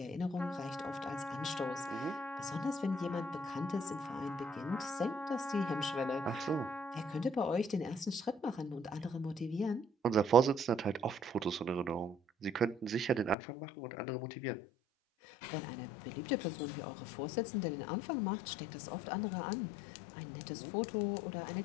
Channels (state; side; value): drops out; right; at 13.4 s